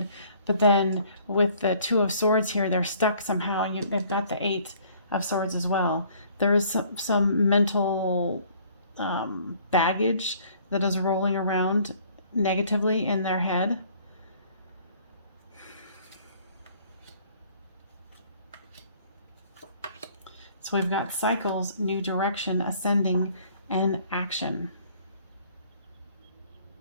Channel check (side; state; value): both; inverted; correlation -0.58